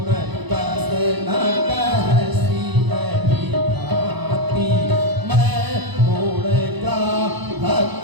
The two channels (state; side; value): late; left; 0.99 ms